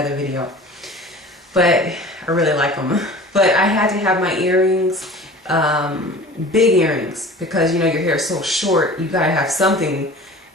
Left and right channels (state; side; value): normal; both; correlation 0.41